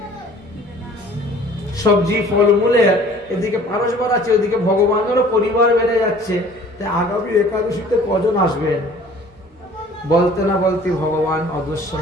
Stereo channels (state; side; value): normal; both; correlation 0.50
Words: সবজি ফলমূলের, এদিকে পারস বাড়াচ্ছে, ওদিকে ভগবানেরও পরিবার বেড়ে যাচ্ছে। আগামী একাদশীতে কজন আসবেন? বলতে না বলতে ভগবান অদর্শন